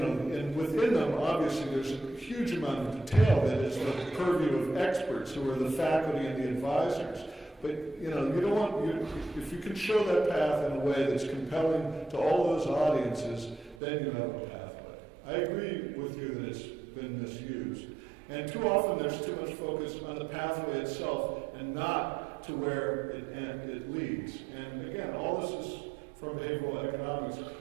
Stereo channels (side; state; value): left; drops out; at 13.8 s